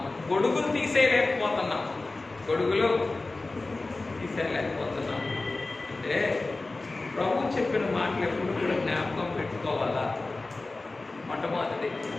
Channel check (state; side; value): quieter; right; 3.3 dB